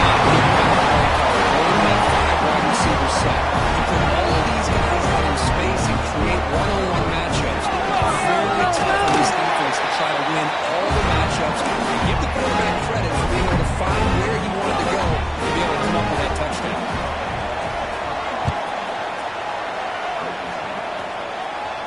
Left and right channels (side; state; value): both; identical; correlation 1.00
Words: here by the play caller. Holding that 5 wide receiver set. You put all of these guys out in space and create one-on-one matchups. Very tough on this defense to try to win all the matchups. And give the quarterback credit for being able to find where he wanted to go to be able to come up with that touchdown.